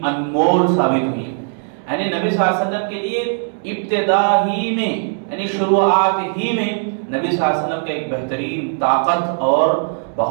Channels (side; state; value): left; silent; digital silence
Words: انمول ثابت ہوئی. یعنی نبی صلی اللہ علیہ وسلم کے لیے ابتدا ہی میں یعنی شروعات ہی میں نبی صلی اللہ علیہ وسلم کا ایک بہترین طاقت اور